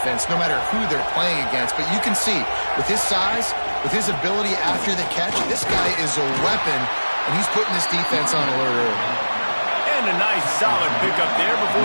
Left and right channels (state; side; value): inverted; both; correlation -1.00